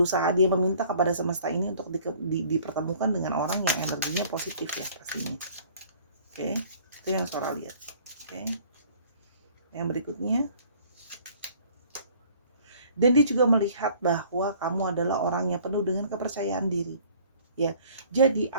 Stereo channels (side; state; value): both; inverted; correlation -0.54